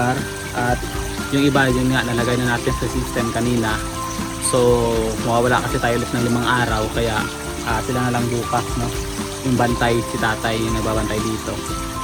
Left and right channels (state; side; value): identical; both; correlation 1.00